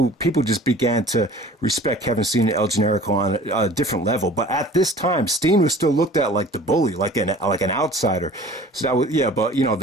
just began to respect Kevin Steen and El Generico on a different level. But at this time, Steen was still looked at like the bully, like an outsider. So that was, yeah. But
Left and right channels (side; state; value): both; normal; correlation 0.45